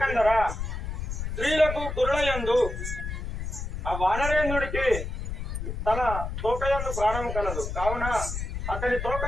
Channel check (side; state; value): left; noise; rumble, 4 dB below the sound